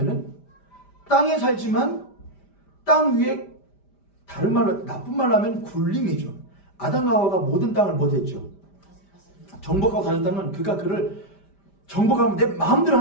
땅에 살지만 땅 위에 다른 말로 나쁜 말로 하면 굴림이죠. 아담과 하와가 모든 땅을 못했죠. 정복하고 다녔다면 그가 그를 정복하면 내 마음대로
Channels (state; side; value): late; right; 5.0 ms